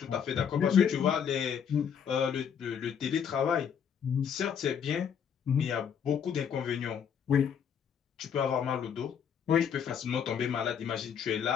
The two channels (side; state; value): right; quieter; 7.7 dB